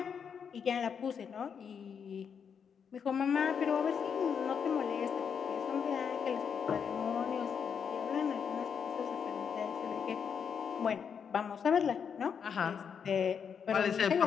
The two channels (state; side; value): quieter; right; 7.0 dB